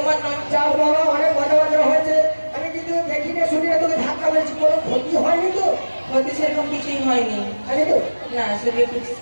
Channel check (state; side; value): inverted; both; correlation -1.00